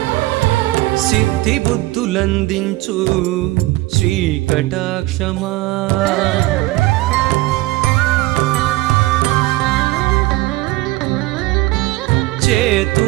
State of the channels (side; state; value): left; quieter; 19.1 dB